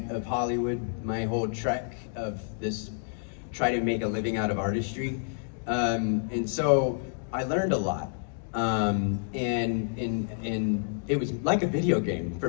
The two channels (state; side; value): silent; right; digital silence